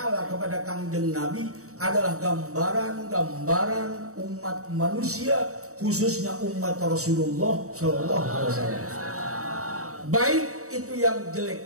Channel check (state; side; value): late; left; 0.65 ms